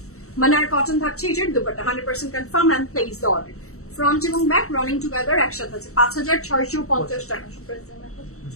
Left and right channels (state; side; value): late; right; 0.64 ms